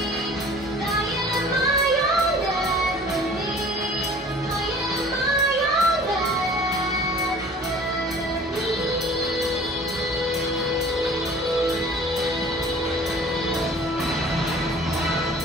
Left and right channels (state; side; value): normal; both; correlation 0.48